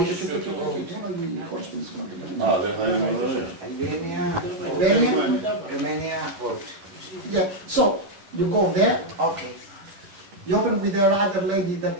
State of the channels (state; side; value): late; left; 10 ms